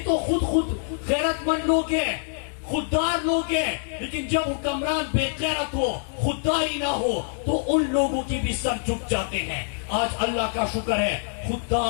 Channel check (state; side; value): silent; right; digital silence